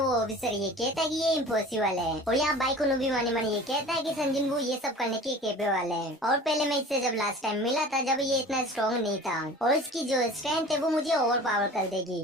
ऑफिसर ये कहता है कि ये इम्पॉसिबल है। और यहाँ बाइक भी मनी मनी ये कहता है कि संजिन वो ये सब करने के कैपेबल है। और पहले मैं इससे जब लास्ट टाइम मिला था जब ये इतना स्ट्रॉन्ग नहीं था, और इसकी जो स्ट्रेंथ है वो मुझे ओवर पावर कर देगी।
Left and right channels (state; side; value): normal; both; correlation 0.41